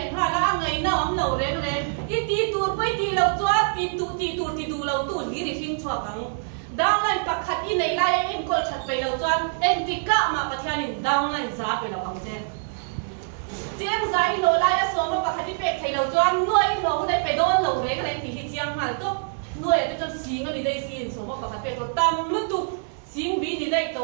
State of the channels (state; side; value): silent; left; 59 dB below the other